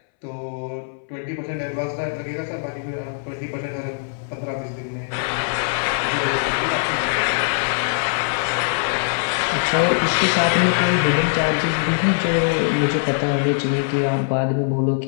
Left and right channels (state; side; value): silent; right; 64 dB below the other